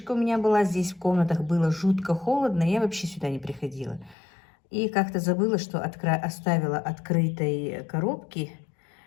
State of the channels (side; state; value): right; drops out; at 4.2 s